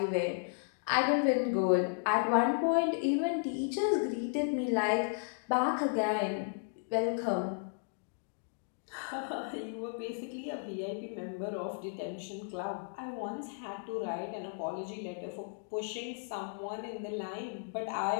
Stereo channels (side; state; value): right; silent; digital silence